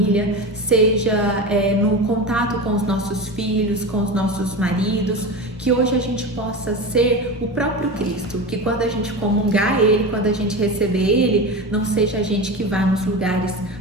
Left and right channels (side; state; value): both; normal; correlation 0.25